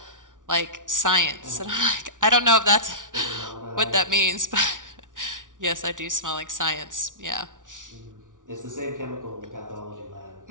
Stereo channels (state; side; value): late; left; 0.88 ms